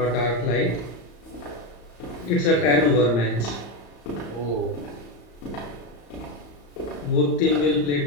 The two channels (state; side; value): late; right; 34 ms